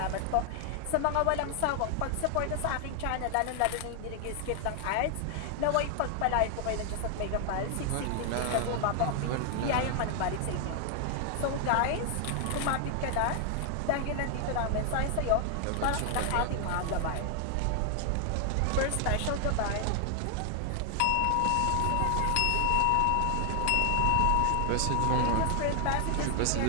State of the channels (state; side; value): different; both; correlation 0.00